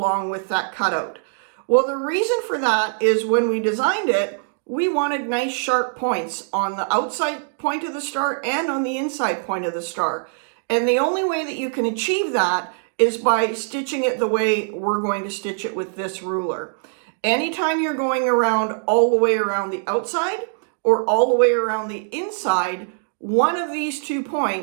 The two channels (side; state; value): left; silent; digital silence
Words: with that cutout? Well, the reason for that is when we designed it, we wanted nice sharp points on the outside point of the star and on the inside point of the star. And the only way that you can achieve that is by stitching it the way we're going to stitch it with this ruler. Anytime you're going around all the way around the outside or all the way around the inside, one of these 2